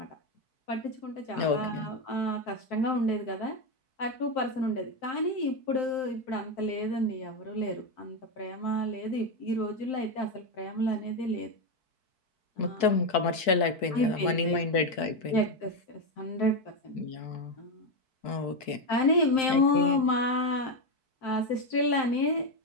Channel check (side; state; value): right; late; 4.6 ms